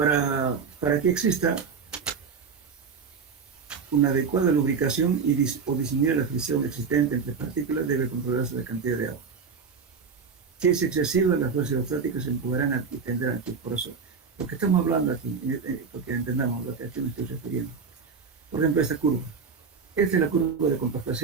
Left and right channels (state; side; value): quieter; left; 5.6 dB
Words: que exista una adecuada lubricación o disminuir la fricción existente entre partículas, debe controlarse la cantidad de agua. Si es excesiva, las fuerzas hidrostáticas se empujarán y tendrán aquí. Por eso, lo que estamos hablando aquí, porque entendamos lo que aquí me estoy refiriendo. Por ejemplo, esta curva. Esta es la curva de